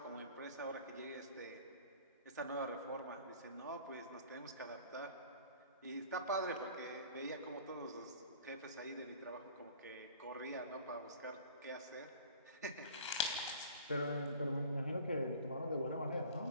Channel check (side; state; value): both; inverted; correlation -0.46